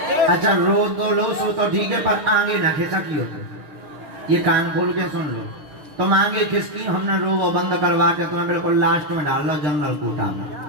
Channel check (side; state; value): left; late; 6.6 ms